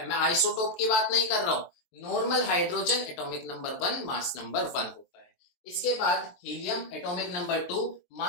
मैं आइसोटोप की बात नहीं कर रहा हूं। Normal hydrogen atomic number 1, mass number 1 होता है। इसके बाद helium atomic number 2,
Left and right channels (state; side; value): late; right; 23 ms